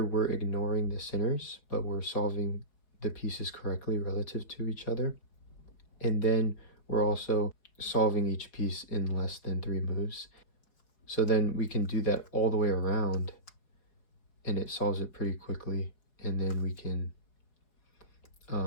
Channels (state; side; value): late; right; 4.7 ms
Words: we're ignoring the centers, but we're solving the pieces correctly relative to each other. And then we're also solving each piece in less than 3 moves. So then we can do that all the way around, and it solves it pretty quickly. And then we can